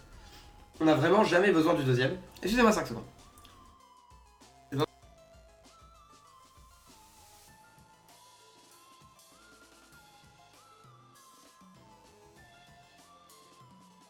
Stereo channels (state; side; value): identical; both; correlation 1.00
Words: On a vraiment jamais besoin du deuxième. Excusez-moi 5 secondes.